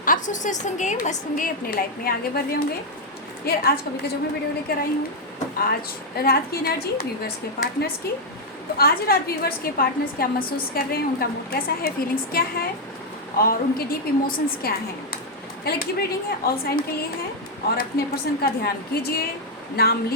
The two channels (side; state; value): both; normal; correlation -0.01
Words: आप स्वस्थ होंगे, मस्त होंगे, अपने लाइफ में आगे बढ़ रहे होंगे। यार आज कभी का जो मैं वीडियो लेकर आई हूँ, आज रात की एनर्जी व्यूवर्स के पार्टनर्स की। तो आज रात व्यूवर्स के पार्टनर्स क्या महसूस कर रहे हैं, उनका मूड कैसा है, फीलिंग्स क्या है और उनके डीप इमोशंस क्या हैं। कलेक्टिव रीडिंग है, ऑल साइन के लिए है और अपने पर्सन का ध्यान कीजिए, नाम